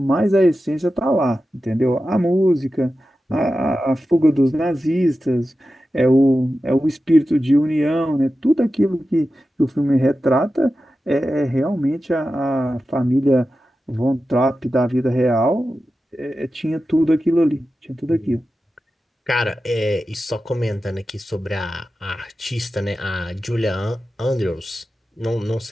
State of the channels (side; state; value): both; normal; correlation 0.93